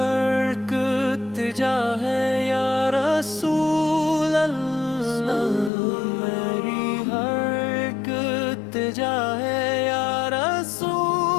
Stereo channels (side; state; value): right; drops out; at 5.7 s